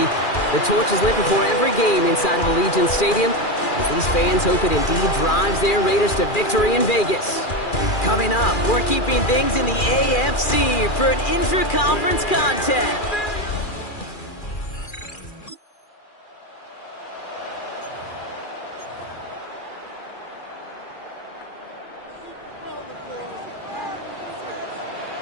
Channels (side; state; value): right; late; 2.4 ms